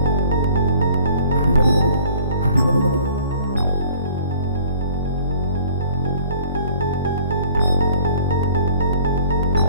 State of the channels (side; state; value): both; inverted; correlation -0.52